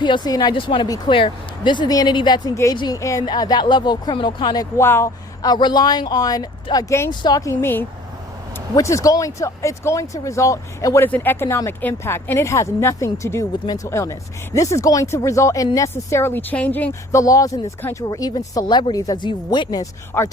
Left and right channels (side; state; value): both; normal; correlation 0.51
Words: and I just want to be clear, this is the entity that's engaging in that level of criminal conduct while relying on gang stalking me, which is going to result in what is an economic impact, and it has nothing to do with mental illness. This is going to result in necessarily changing the laws in this country, where even celebrities, as you've witnessed, are